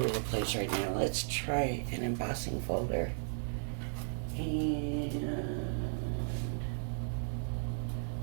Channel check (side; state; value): left; silent; digital silence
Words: the place right now. Let's try an embossing folder. And